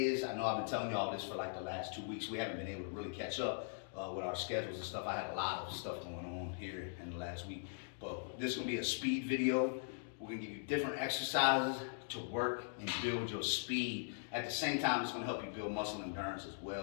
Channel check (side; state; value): right; silent; digital silence